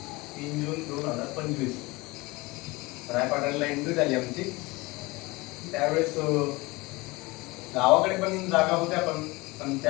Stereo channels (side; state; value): right; quieter; 23.2 dB